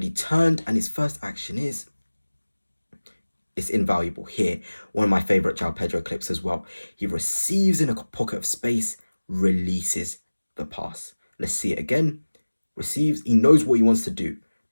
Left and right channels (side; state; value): both; inverted; correlation -1.00